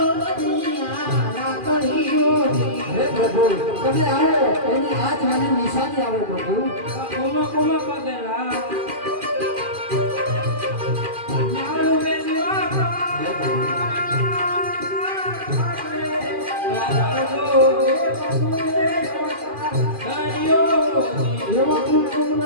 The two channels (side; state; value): left; late; 2.4 ms